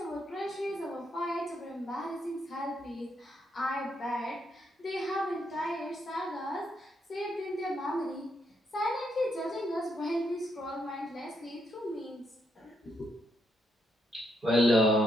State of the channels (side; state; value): both; normal; correlation 0.78